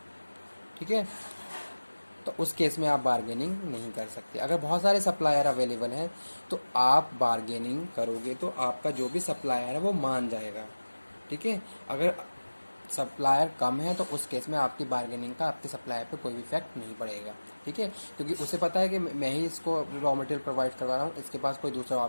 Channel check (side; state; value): both; inverted; correlation -1.00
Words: ठीक है, तो उस केस में आप बार्गेनिंग नहीं कर सकते। अगर बहुत सारे सप्लायर अवेलेबल हैं तो आप बार्गेनिंग करोगे तो आपका जो भी सप्लायर है वो मान जाएगा, ठीक है। अगर सप्लायर कम है तो उस केस में आपकी बार्गेनिंग का आपके सप्लायर पे कोई भी इफेक्ट नहीं पड़ेगा, ठीक है, क्योंकि उसे पता है कि मैं ही इसको रॉ मटेरियल प्रोवाइड करवा रहा हूँ, इसके पास कोई दूसरा